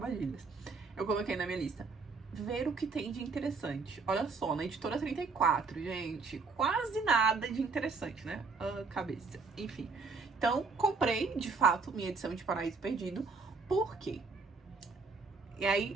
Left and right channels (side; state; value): left; quieter; 4.5 dB